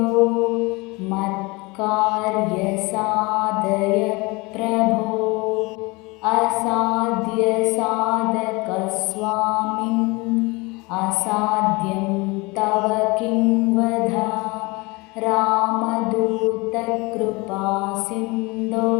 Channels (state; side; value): quieter; right; 25.3 dB